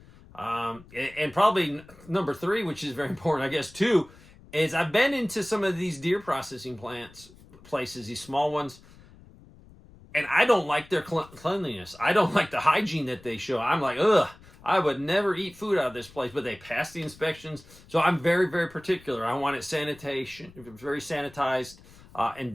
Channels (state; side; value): noise; left; rumble, 23 dB below the sound